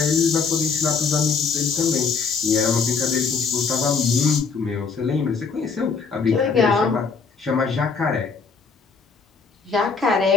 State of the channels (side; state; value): right; quieter; 5.2 dB